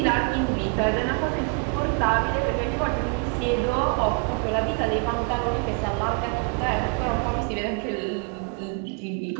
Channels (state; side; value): quieter; left; 36.8 dB